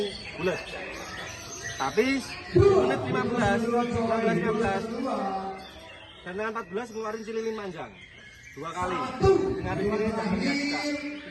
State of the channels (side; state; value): both; identical; correlation 1.00